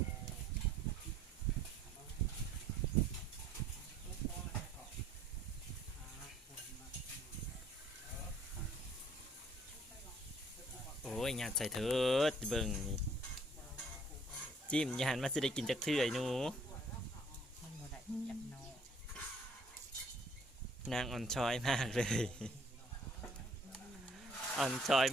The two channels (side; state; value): both; normal; correlation 0.60